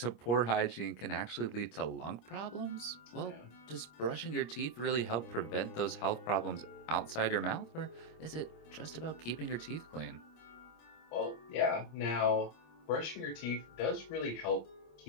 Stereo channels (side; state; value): right; late; 25 ms